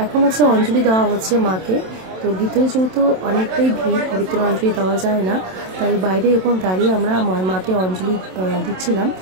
এখন হচ্ছে অঞ্জলি দেওয়া হচ্ছে মাকে। তো ভিতরে যেহেতু অনেকটাই ভিড়, ভিতরে অঞ্জলি দেওয়া যায় না, তাই বাইরে এখন দাঁড়িয়ে আমরা মাকে অঞ্জলি দিচ্ছিলাম,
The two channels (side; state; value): left; late; 27 ms